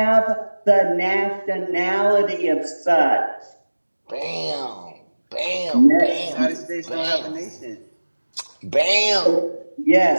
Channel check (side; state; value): both; inverted; correlation -1.00